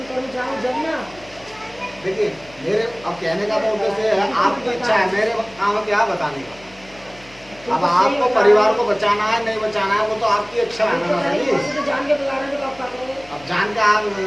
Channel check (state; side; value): noise; left; hum, 24 dB below the sound